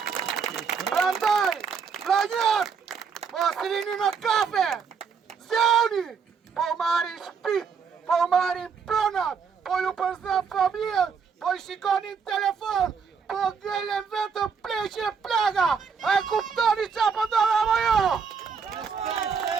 Prandaj, vllajat, mos rini në kafe, zjauni, po marrin shtëpit, po marrin pronat, po ju përzën familjen, po i shikonin telefon, po ngelen vetëm pleqe plaga, a e kuptoni qa po ndodh apo jo?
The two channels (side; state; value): left; quieter; 6.1 dB